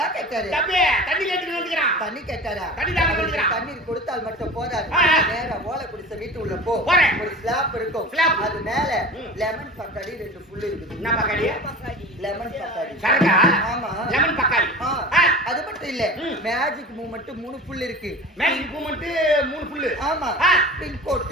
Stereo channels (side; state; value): both; normal; correlation 0.36